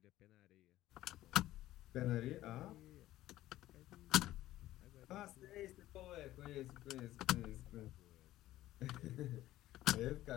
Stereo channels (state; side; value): quieter; right; 14.9 dB